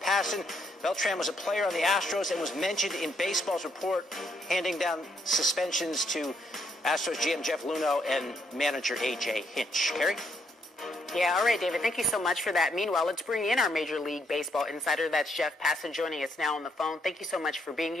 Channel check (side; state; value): both; normal; correlation 0.74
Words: Passan. Beltran was a player on the Astros and was mentioned in baseball's report, handing down suspensions to Astros GM Jeff Luhnow and manager A.J. Hinch. Kerry? Yeah, all right, David, thank you so much for that. Meanwhile, let's bring in our Major League Baseball insider. That's Jeff Passan joining us now on the phone. Thank you so much for being